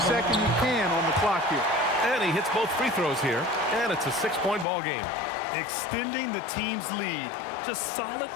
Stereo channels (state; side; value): drops out; right; at 4.7 s